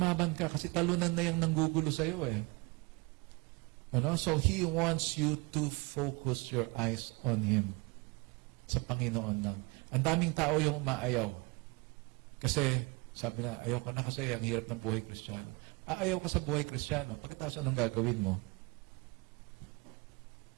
ka kasi talunan na yung nanggugulo sa iyo So He wants you to focus your eyes on Him. Sa Panginoon lang. Ang daming tao yung umaayaw. Kasi, sabi na, ayaw ko na kasi ang hirap ng buhay Kristiyano. Aayaw ka sa buhay Kristiyano. Pagkatapos anong gagawin mo?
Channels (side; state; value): left; quieter; 26.9 dB